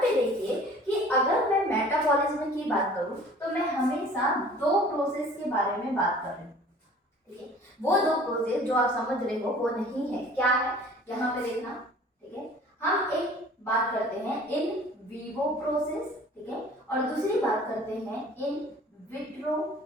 देखिए कि अगर मैं मेटाबॉलिज्म की बात करूं तो मैं हमेशा दो प्रोसेस के बारे में बात कर रही हूँ, ठीक है। वो दो प्रोसेस जो आप समझ रहे हो वो नहीं है, क्या है, यहाँ पे देखना, ठीक है। हम एक बात करते हैं इन विवो प्रोसेस, ठीक है, और दूसरी बात करते हैं इन विट्रो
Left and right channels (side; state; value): both; normal; correlation 0.48